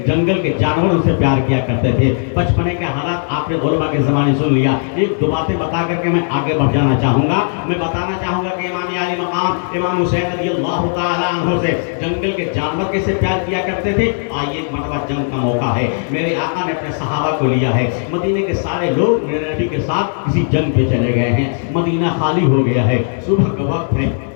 جنگل کے جانور ان سے پیار کیا کرتے تھے۔ بچپنے کے حالات آپ نے علماء کے زمانے سن لیا، ایک دو باتیں بتا کر کے میں آگے بڑھ جانا چاہوں گا۔ میں بتانا چاہوں گا کہ امام علی مقام امام حسین رضی اللہ تعالیٰ عنہ سے جنگل کے جانور کیسے پیار کیا کرتے تھے۔ آئیے ایک مرتبہ جنگ کا موقع ہے، میرے آقا نے اپنے صحابہ کو لیا ہے، مدینے کے سارے لوگ میرے نبی کے ساتھ کسی جنگ پہ چلے گئے ہیں، مدینہ خالی ہو گیا ہے، صبح کا وقت ہے،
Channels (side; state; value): right; silent; digital silence